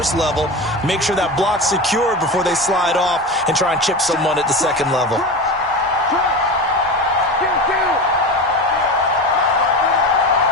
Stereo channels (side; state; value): both; normal; correlation 0.25